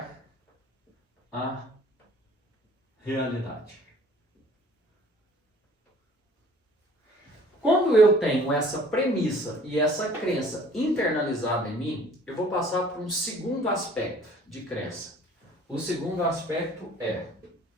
a realidade. Quando eu tenho essa premissa e essa crença internalizada em mim, eu vou passar para um segundo aspecto de crença. O segundo aspecto é:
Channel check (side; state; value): both; normal; correlation 0.52